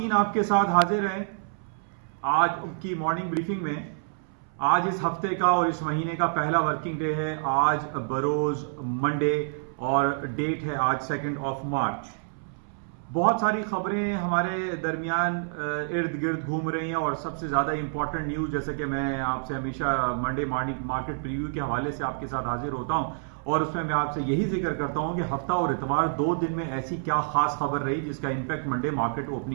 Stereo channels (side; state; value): left; silent; 60 dB below the other